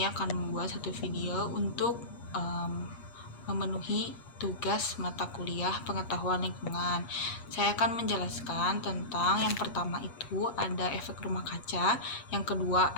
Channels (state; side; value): late; right; 8.4 ms